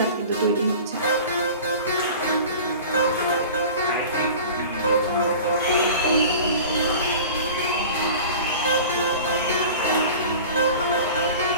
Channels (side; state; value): both; inverted; correlation -0.39